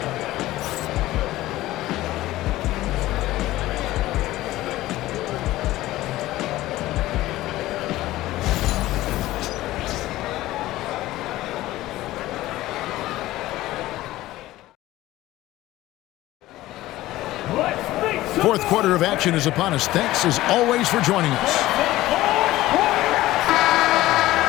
Fourth quarter of action is upon us. Thanks, as always, for joining us.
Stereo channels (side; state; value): right; quieter; 16.4 dB